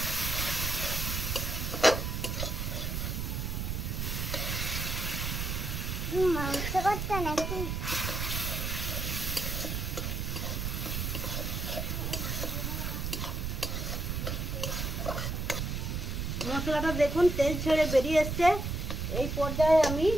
মাংস করতে নাকি? মশলাটা দেখুন তেল ছেড়ে বেরিয়ে এসছে। এই পর্যায়ে আমি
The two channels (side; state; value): right; noise; rumble, 2 dB below the sound